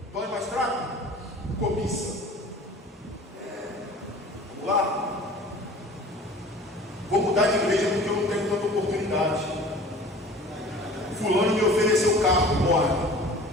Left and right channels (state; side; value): normal; both; correlation 0.44